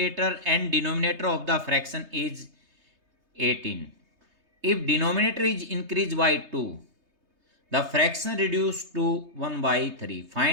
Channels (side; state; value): left; late; 3.3 ms